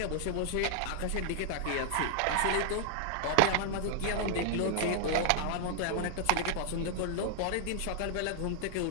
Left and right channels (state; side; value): different; both; correlation -0.01